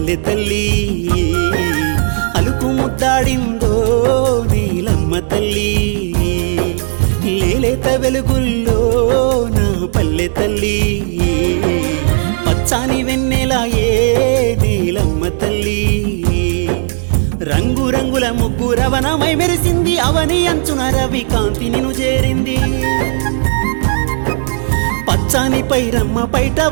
తల్లి అలుకు ముద్దాడిందో నీలమ్మ తల్లి లేలేత వెలుగుల్లో నా పల్లె తల్లి పచ్చాని వెన్నెలాయే నీలమ్మ తల్లి రంగు రంగుల ముగ్గు రవణమై మెరిసింది అవని అంచున రవి కాంతి నిను చేరింది పచ్చాని పైరమ్మ పైట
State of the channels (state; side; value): silent; left; digital silence